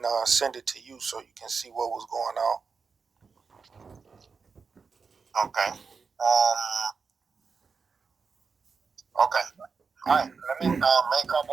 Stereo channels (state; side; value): quieter; left; 5.1 dB